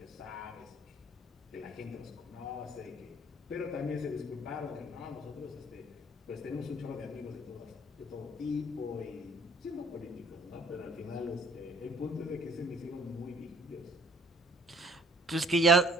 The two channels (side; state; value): both; normal; correlation 0.55